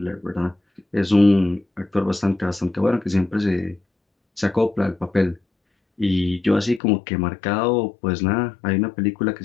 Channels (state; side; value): drops out; right; at 6.8 s